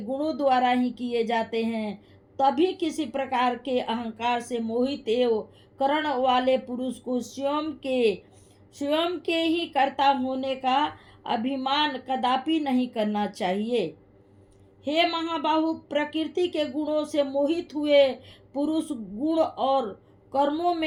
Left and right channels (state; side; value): identical; both; correlation 1.00